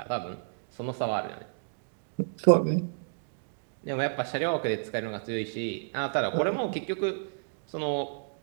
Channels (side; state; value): left; silent; digital silence